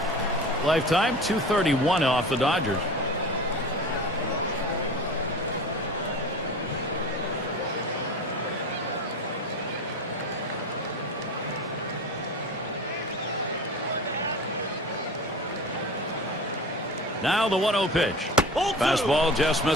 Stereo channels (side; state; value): both; normal; correlation 0.34